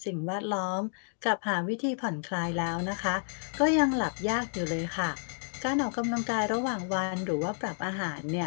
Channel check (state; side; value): silent; right; 57 dB below the other